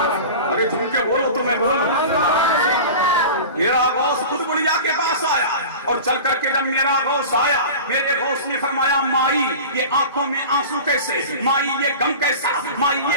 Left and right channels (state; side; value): inverted; both; correlation -0.34